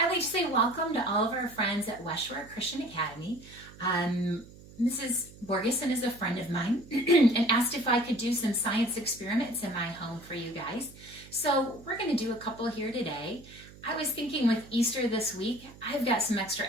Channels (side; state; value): right; noise; hum, 20 dB below the sound